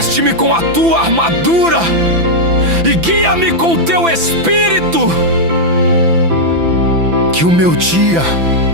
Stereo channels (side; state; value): left; late; 5.9 ms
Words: com a tua armadura e guia-me com teu Espírito. Que o meu dia